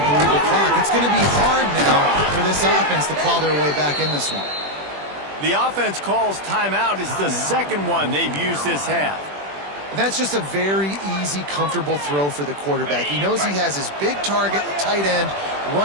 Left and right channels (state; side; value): late; left; 21 ms